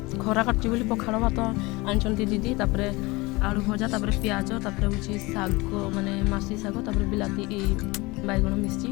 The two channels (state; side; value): quieter; right; 23.3 dB